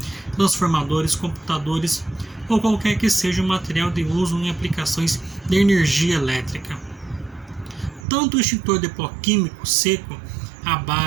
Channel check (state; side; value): drops out; left; at 8.1 s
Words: transformadores, computadores ou qualquer que seja o material de uso em aplicações de energia elétrica. Tanto o extintor de pó químico seco à